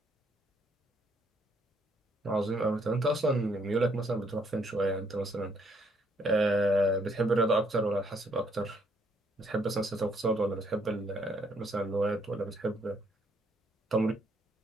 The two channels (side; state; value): both; normal; correlation 0.69